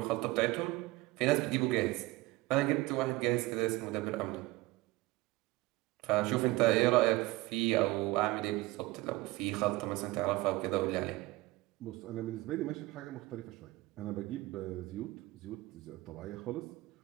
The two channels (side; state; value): left; quieter; 20.3 dB